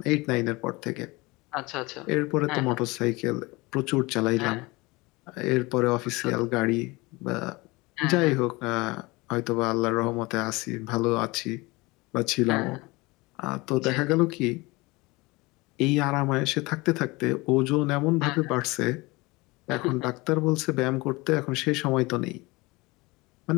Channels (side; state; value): right; quieter; 23.5 dB